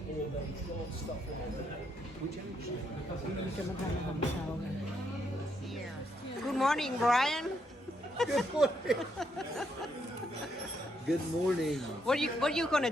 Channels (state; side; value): normal; both; correlation 0.76